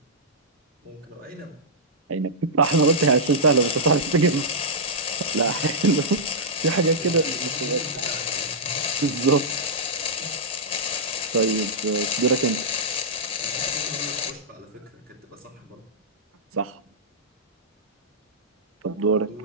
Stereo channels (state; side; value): normal; both; correlation -0.11